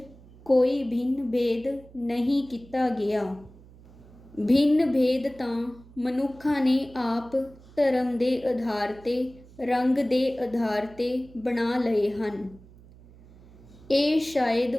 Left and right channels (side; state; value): right; noise; hum, 23 dB below the sound